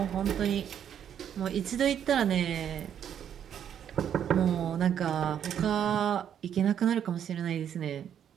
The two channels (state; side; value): quieter; left; 9.2 dB